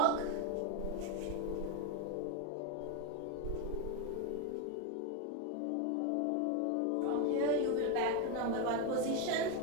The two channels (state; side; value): different; both; correlation 0.01